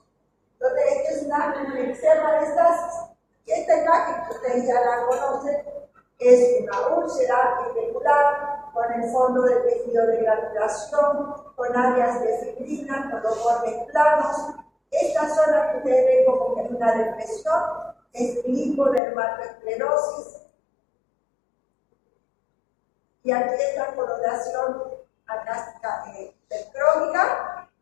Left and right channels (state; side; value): drops out; right; at 19.0 s